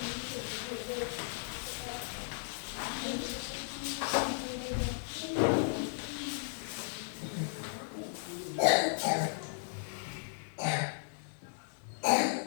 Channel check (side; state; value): right; silent; digital silence